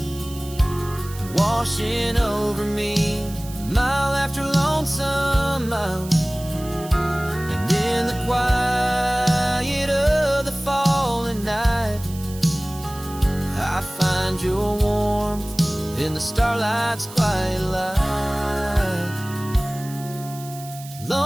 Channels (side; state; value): right; noise; hiss, 16 dB below the sound